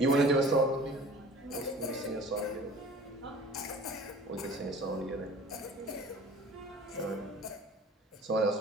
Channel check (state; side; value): normal; both; correlation 0.45